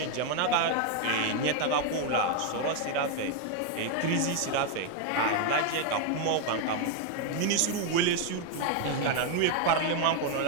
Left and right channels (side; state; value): both; different; correlation 0.01